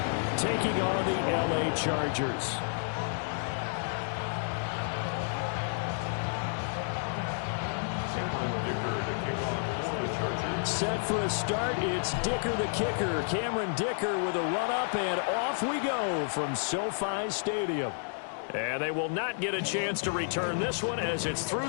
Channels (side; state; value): right; silent; digital silence